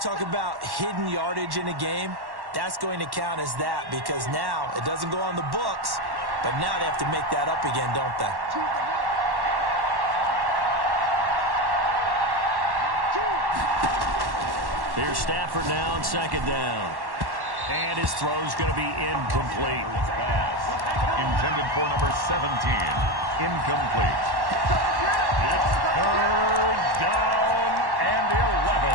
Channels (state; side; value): late; left; 1.1 ms